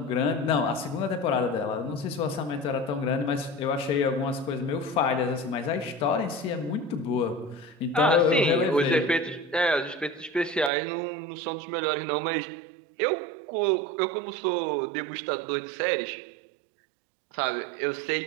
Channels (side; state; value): left; drops out; at 10.7 s